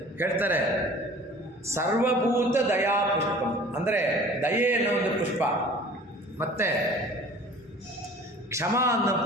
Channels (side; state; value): both; normal; correlation 0.47